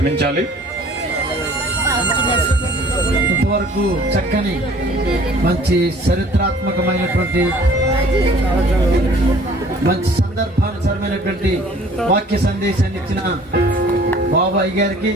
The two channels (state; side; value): normal; both; correlation 0.53